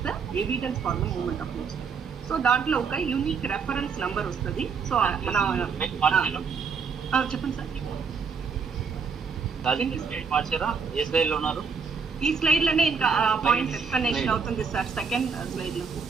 the evidence for the movement of goods. So దాంట్లో ఒక యూనిక్ రెఫరెన్స్ నంబర్ వస్తుంది. సో మన చెప్పండి సార్. ఈ స్లైడ్ లోనే ఇంకా పాయింట్ ఎక్స్ప్లెనేషన్ అవుతుంది సార్, సెకండ్ స్లైడ్ లో.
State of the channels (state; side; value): quieter; left; 5.7 dB